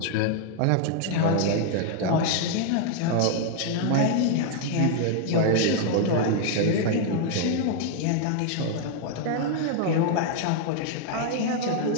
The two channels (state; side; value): different; both; correlation 0.00